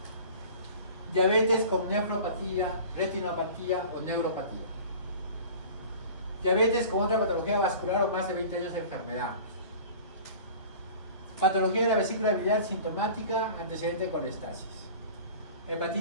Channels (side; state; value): both; inverted; correlation -0.41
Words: Diabetes con nefropatía, retinopatía o neuropatía. Diabetes con otra patología vascular o más de 20 años de enfermedad. Patología de la vesícula biliar sintomática, antecedente de colestasis.